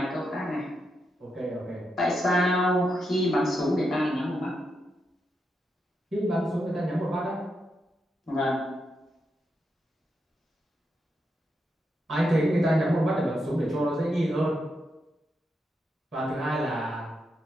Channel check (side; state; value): both; normal; correlation 0.84